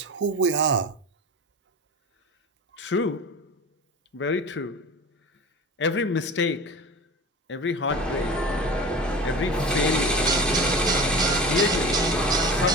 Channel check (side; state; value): both; normal; correlation 0.34